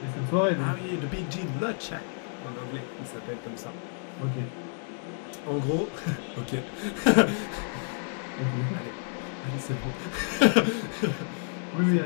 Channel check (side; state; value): right; silent; 58 dB below the other